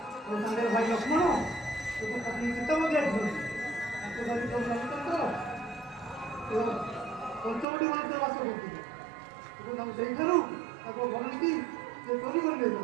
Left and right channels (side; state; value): left; drops out; at 7.7 s